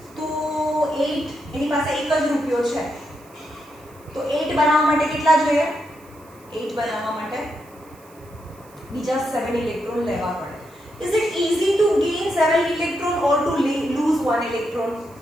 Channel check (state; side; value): noise; right; hiss, 27 dB below the sound